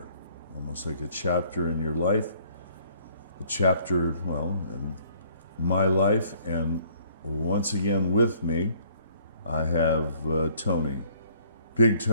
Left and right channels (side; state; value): both; inverted; correlation -0.60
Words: almost like a chapter in your life, a chapter, well, in my life. And once again with me, I have Tony. Big